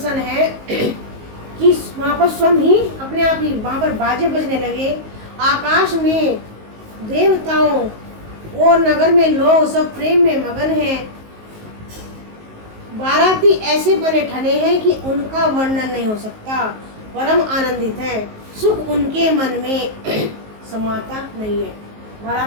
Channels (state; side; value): late; left; 19 ms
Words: है कि वहाँ पर स्वयं ही अपने आप ही वहाँ पर बाजे बजने लगे। आकाश में देवताओं और नगर में लोग सब प्रेम में मगन हैं। बाराती ऐसे बने ठने हैं कि उनका वर्णन नहीं हो सकता। परम आनंदित है, सुख उनके मन में समाता नहीं है।